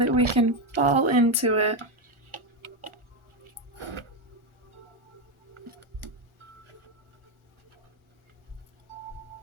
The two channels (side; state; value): left; late; 1.4 ms